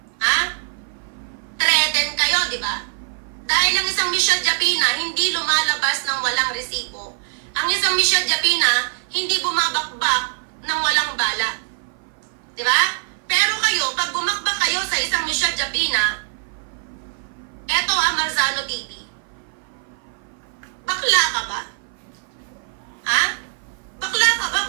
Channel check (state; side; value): silent; left; 56 dB below the other